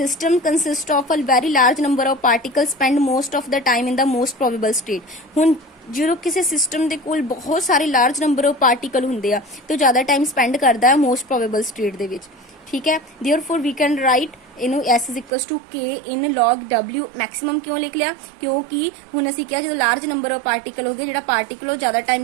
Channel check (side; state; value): left; drops out; at 15.3 s